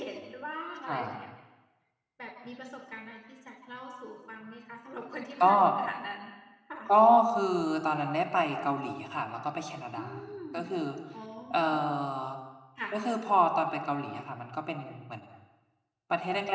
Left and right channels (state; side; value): identical; both; correlation 1.00